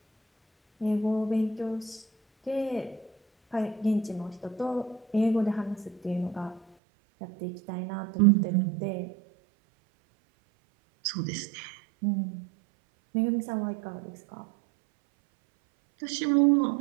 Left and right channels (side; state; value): left; drops out; at 6.6 s